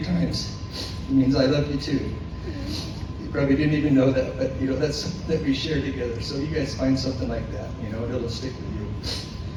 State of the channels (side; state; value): both; identical; correlation 1.00